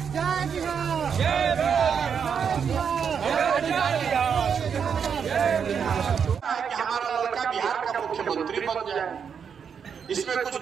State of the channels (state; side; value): quieter; left; 7.0 dB